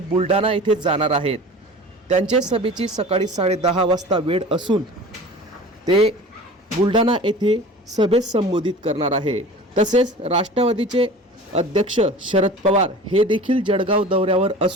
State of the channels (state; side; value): normal; both; correlation 0.39